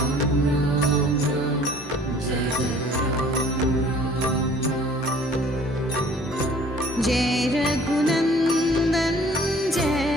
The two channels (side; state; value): both; normal; correlation 0.53